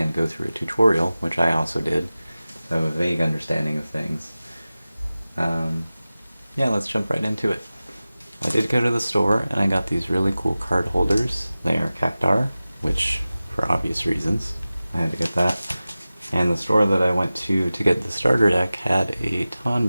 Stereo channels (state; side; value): inverted; both; correlation -0.96